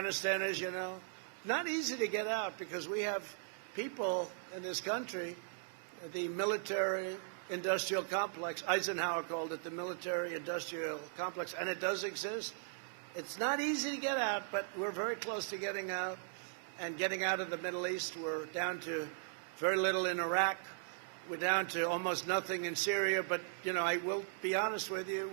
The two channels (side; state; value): left; silent; digital silence